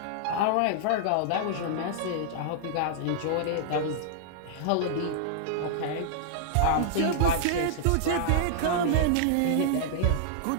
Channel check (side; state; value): both; different; correlation -0.01